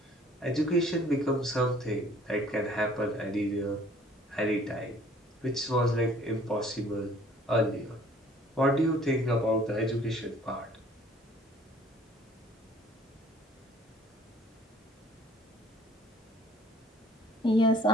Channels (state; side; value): normal; both; correlation 0.55